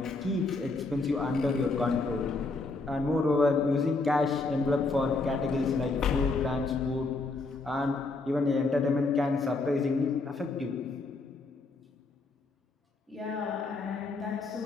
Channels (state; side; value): quieter; right; 3.5 dB